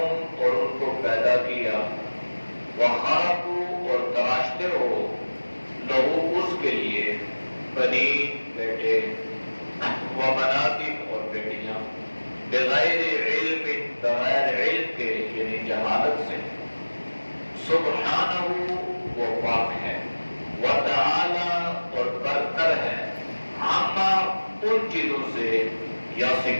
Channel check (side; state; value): both; inverted; correlation -1.00